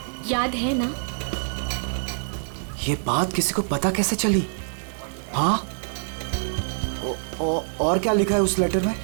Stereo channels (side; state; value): left; silent; digital silence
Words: याद है ना? ये बात किसी को पता कैसे चली? हाँ, और क्या लिखा है उस लेटर में?